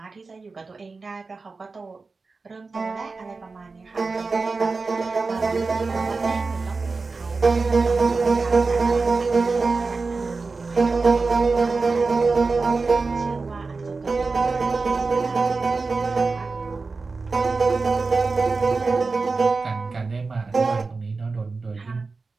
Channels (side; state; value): left; quieter; 4.1 dB